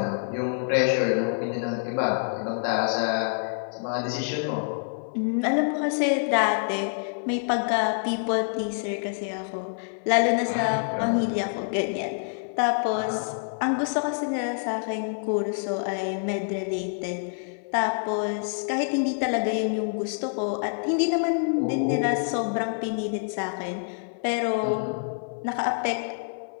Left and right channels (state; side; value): silent; right; 60 dB below the other